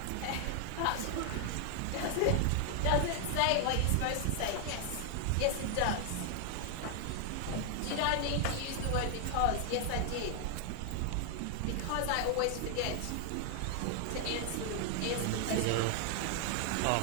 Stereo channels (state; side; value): different; both; correlation 0.00